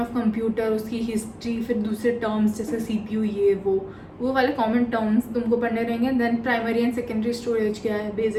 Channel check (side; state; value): both; identical; correlation 1.00